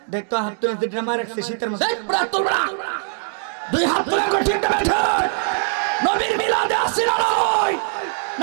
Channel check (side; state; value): left; silent; 65 dB below the other